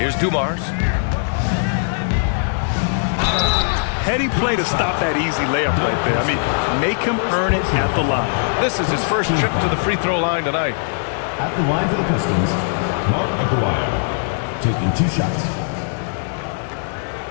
Dumars. Heady play to stop that easy layup right there. I mean, make him earn it at the line. This is his first trip to the free throw line tonight. At the line for the Pistons, Mark Aguirre, taking 2 shots.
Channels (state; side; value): silent; right; 66 dB below the other